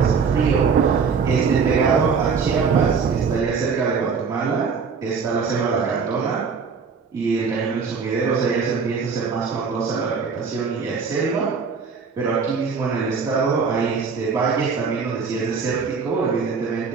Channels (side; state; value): left; quieter; 5.5 dB